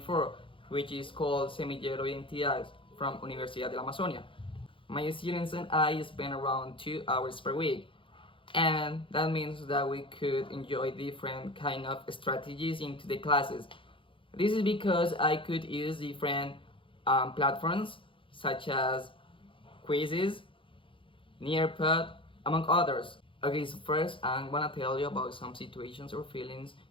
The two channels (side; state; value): right; late; 0.25 ms